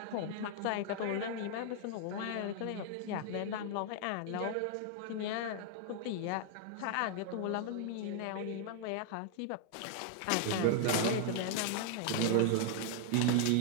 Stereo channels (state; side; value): different; both; correlation 0.00